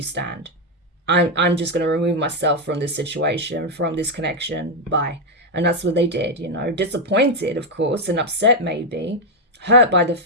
stand. I'm just going to remove myself from this situation, from this connection. Bye. And that's what they did, you know, disappointed, of course, and upset maybe, hurt by the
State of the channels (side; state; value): both; normal; correlation 0.03